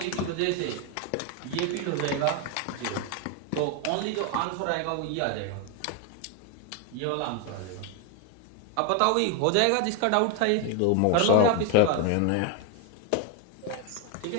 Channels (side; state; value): both; different; correlation 0.01